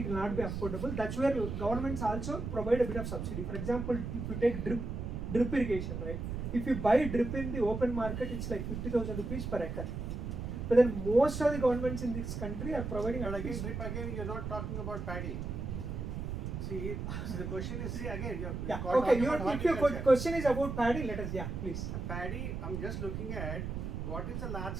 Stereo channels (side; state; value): right; noise; rumble, 4 dB below the sound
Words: it will not be affordable. That's where governments also provide a bit of subsidy. For example, if you take drip irrigation, right? If you buy drip in the open market, it's like 50,000 rupees per acre. But then most of the governments in this country are providing. But again, drip again, you're not talking about paddy. See, so the question is, see again, yeah. Okay. If your question is about paddy, let us please. Paddy, I'm just looking at what is the large